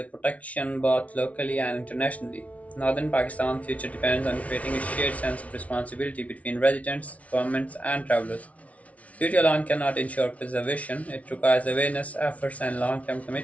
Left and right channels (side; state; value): right; late; 0.066 ms